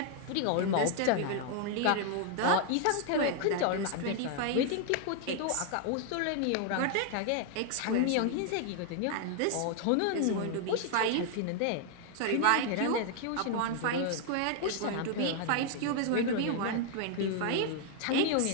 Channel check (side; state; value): both; different; correlation 0.00